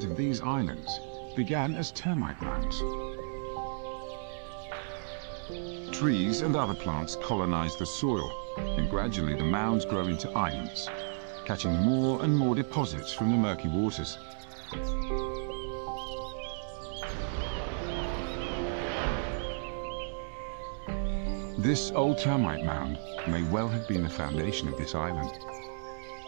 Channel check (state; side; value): silent; left; 56 dB below the other